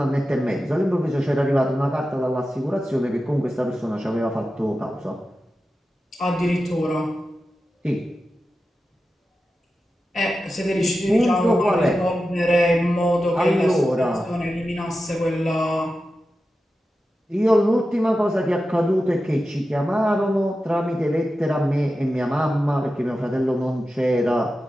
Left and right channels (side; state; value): both; normal; correlation 0.92